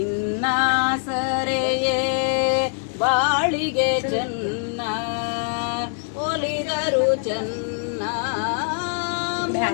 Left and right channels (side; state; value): right; silent; 63 dB below the other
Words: ಸರೆಯೇ ಬಾಳಿಗೆ ಚೆನ್ನ ಒಲಿದರು ಚೆನ್ನ